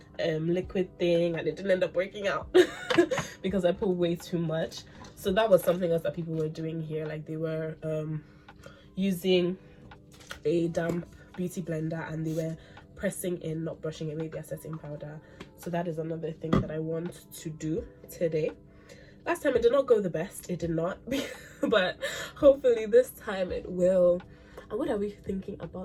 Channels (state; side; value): identical; both; correlation 1.00